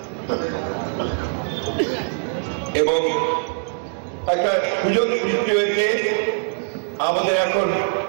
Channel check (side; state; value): left; silent; 64 dB below the other